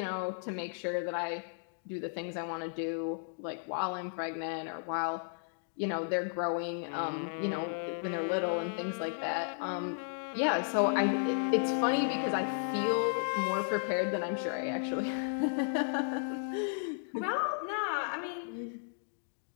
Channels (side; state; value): right; silent; digital silence